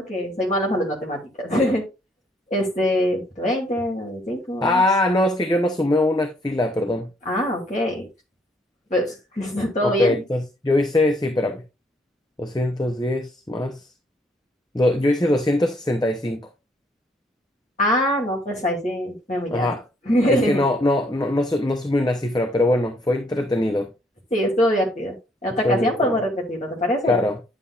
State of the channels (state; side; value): normal; both; correlation 0.67